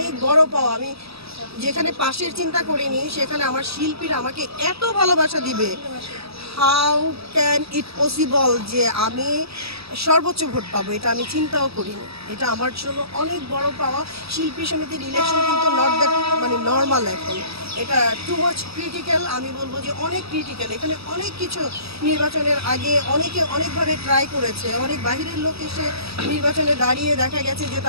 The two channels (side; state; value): left; late; 0.77 ms